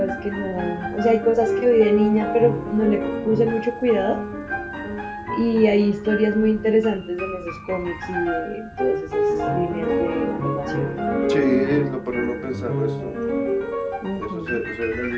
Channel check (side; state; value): both; identical; correlation 1.00